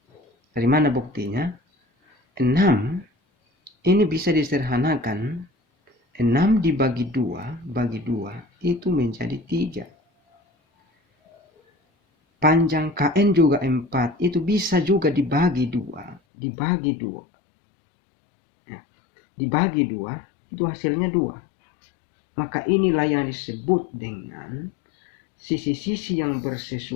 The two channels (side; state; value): right; drops out; at 16.2 s